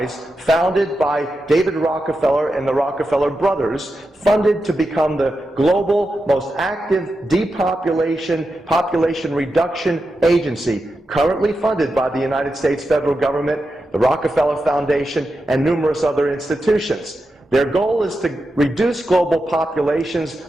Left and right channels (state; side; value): normal; both; correlation 0.89